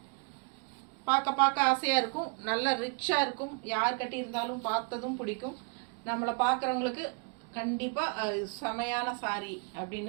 பார்க்க ஆசையாக இருக்கும். நல்லா ரிச்சாக இருக்கும். யார் கட்டியிருந்தாலும் பார்த்ததும் பிடிக்கும். நம்மளை பார்க்குறவங்களுக்கு கண்டிப்பாக செமையான சாரி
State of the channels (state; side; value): quieter; left; 35.3 dB